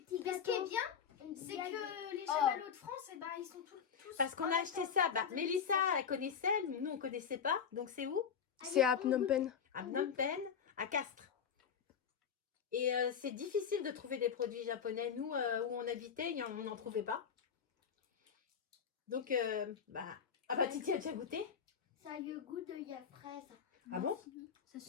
Ce gâteaux. qui est bien, c'est que les chamallows de France, eh ben, ils sont tous... Parce qu'on a acheté ça. Bah, Mélissa, elle connaissait, nous on connaissait pas. Donc c'est où? C'est à Phnom Penh. À Phnom Penh, à Castres. Et c'est difficile de trouver des produits japonais. Nous, où on habitait, on n'en trouvait pas. Donc, bah... Ah bah, Titi a déjà goûté? Ça a le goût de la fraise. Ah bon?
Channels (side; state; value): right; quieter; 7.2 dB